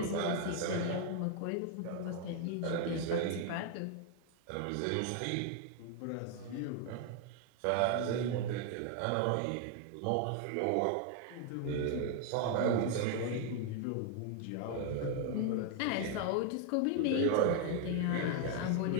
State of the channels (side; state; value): both; different; correlation 0.00